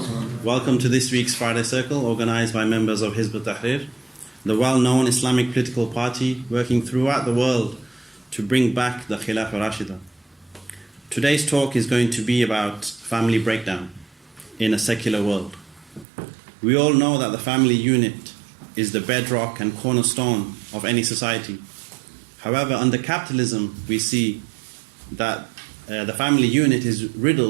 Welcome to this week's Friday Circle, organized by members of Hizb ut-Tahrir, the well-known Islamic political party working throughout the world to bring back the Khilafah Rashida. Today's talk is going to be about family breakdown in a secular world. We all know that the family unit is the bedrock and cornerstone of any society. However, under capitalism, we see that the family unit is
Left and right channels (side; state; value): left; drops out; at 16.1 s